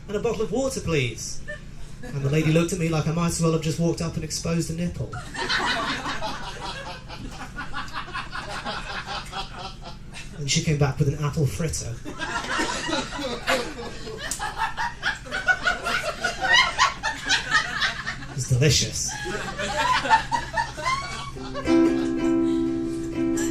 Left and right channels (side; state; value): both; identical; correlation 1.00